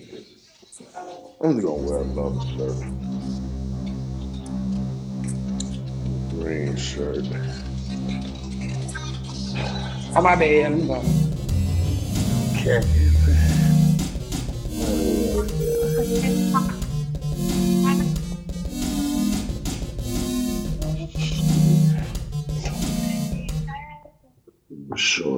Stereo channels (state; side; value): identical; both; correlation 1.00